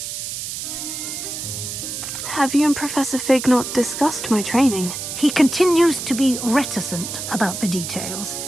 Have you and Professor Fig not discussed my training? He continues to be reticent about the details,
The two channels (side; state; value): right; noise; hiss, 6 dB below the sound